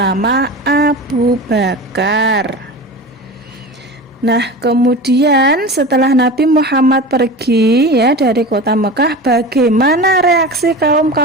Abu Bakar. Nah, kemudian setelah Nabi Muhammad pergi ya dari kota Mekah, bagaimana reaksi kaum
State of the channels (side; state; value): both; normal; correlation 0.31